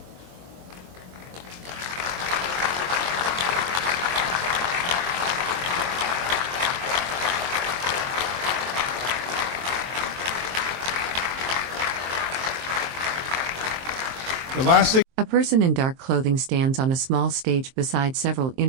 The last thing. A person in dark clothing stands on a small stage beside several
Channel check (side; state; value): left; late; 23 ms